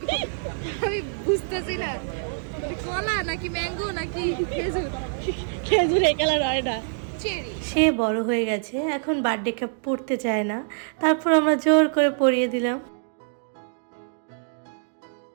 আমি বুঝতেছি না কলা নাকি ম্যাঙ্গো নাকি খেজুর। খেজুর এই কালার হয় না। চেরি। সে বড় হয়ে গেছে, এখন বার্থডে কেক পড়তে চায় না, তারপর আমরা জোর করে পরিয়ে দিলাম।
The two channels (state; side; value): silent; left; digital silence